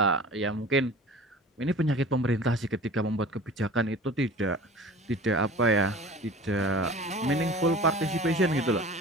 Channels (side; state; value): both; normal; correlation 0.41